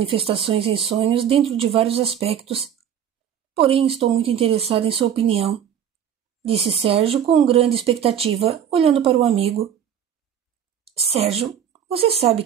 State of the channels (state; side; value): quieter; left; 9.1 dB